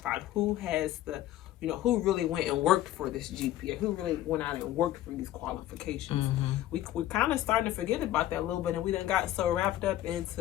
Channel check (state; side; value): quieter; right; 13.7 dB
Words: who has the, you know, who really went and worked for this GPA, who really went out and worked for these qualifications. We're kind of starting to forget about that a little bit, and we done got so wrapped up